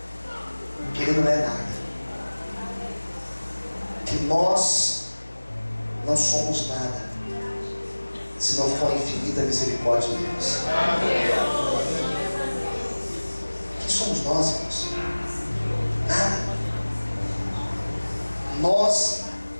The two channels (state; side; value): inverted; both; correlation -1.00